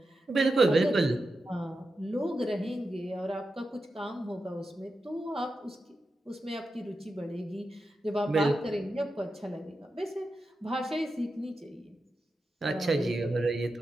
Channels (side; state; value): both; normal; correlation 0.90